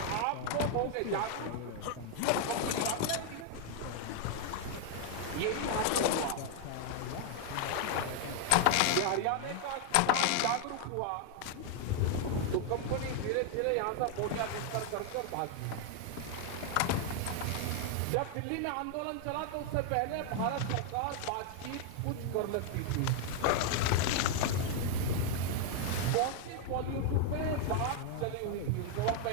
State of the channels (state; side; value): different; both; correlation 0.00